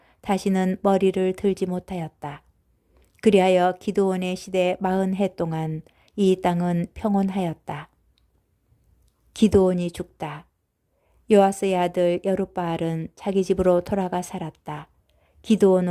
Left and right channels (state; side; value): identical; both; correlation 1.00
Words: 다시는 머리를 들지 못하였다. 그리하여 기드온의 시대 40해 동안 이 땅은 평온하였다. 기드온이 죽다. 요아스의 아들 여룻바알은 자기 집으로 돌아가 살았다.